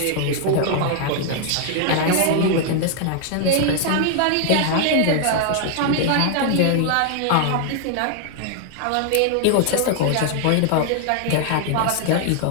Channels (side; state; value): both; different; correlation 0.00